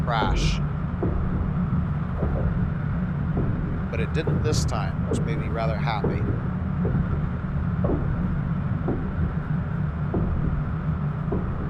But it didn't this time, which made me rather happy.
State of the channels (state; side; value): identical; both; correlation 1.00